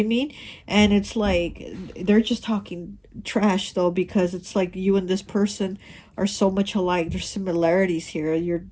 mean? And it's like they're just talking trash, though, because it's like you and this person are so much alike. There's similarities here. You're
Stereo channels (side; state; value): both; identical; correlation 1.00